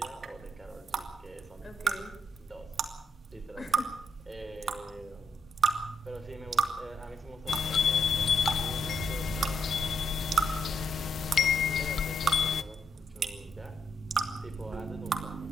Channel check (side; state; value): both; normal; correlation 0.76